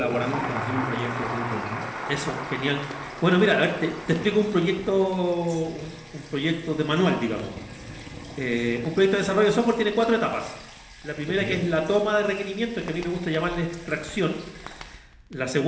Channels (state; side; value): identical; both; correlation 1.00